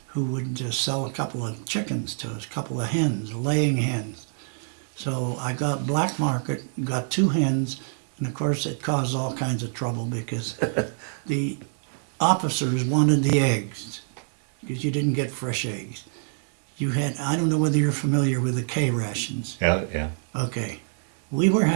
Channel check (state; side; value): silent; left; digital silence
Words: who would sell a couple of chickens to us, a couple of hens, laying hens. So I got black market, got 2 hens, and of course it caused all kinds of trouble because the officers wanted the eggs because you didn't get fresh eggs. You had, I don't know whether you're familiar with the K rations. Yeah, yeah. Okay, we were